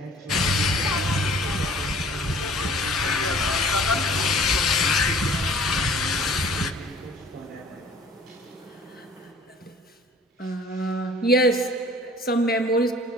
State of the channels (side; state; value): both; normal; correlation 0.51